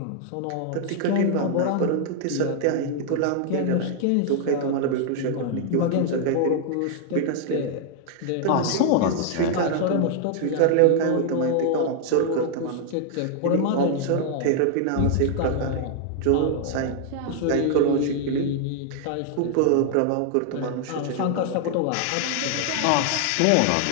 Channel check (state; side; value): different; both; correlation 0.00